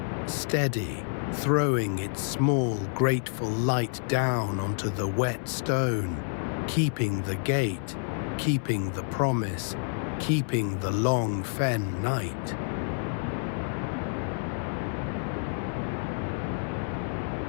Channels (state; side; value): silent; right; 59 dB below the other